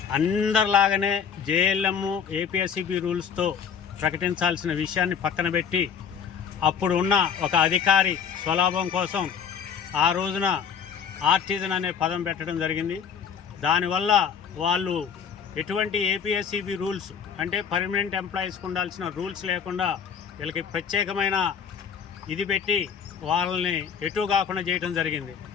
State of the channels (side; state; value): right; quieter; 7.1 dB